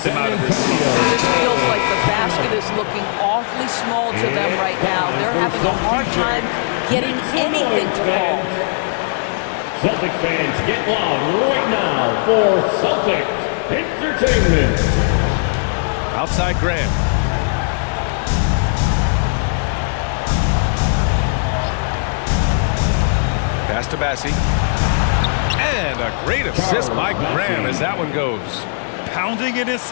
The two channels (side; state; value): right; silent; digital silence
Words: them out of this slump. It just feels like the basket is looking awfully small to them right now. They're having a hard time getting anything to fall. Celtic fans, get loud right now for Celtic Entertainment. Outside Graham. Pass to Bassi. And a great assist by Graham as that one goes. Pounding it